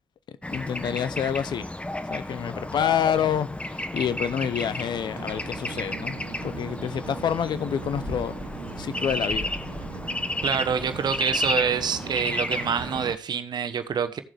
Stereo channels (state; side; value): normal; both; correlation 0.43